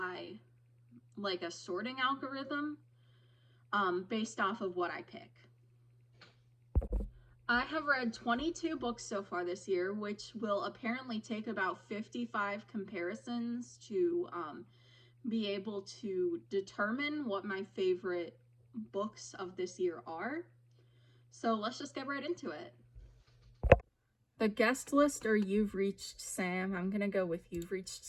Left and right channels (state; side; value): identical; both; correlation 1.00